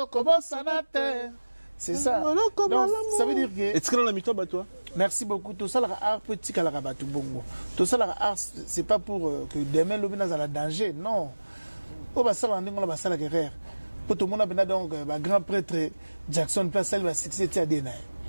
kobosana te. C'est ça. Donc, ça veut dire que... Est-ce que dans la mi-temps, toi? Merci beaucoup. Tout ça, l'art petit à la rabatou bongo. Tout ça, l'art, c'est pas pour que demain, l'homme n'a pas danger. Non. Au bas, ça, on va ça la guerre. Pour tout le monde, donc, grand prêtre Jackson, place, elle va succéder à Dena.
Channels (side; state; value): both; inverted; correlation -1.00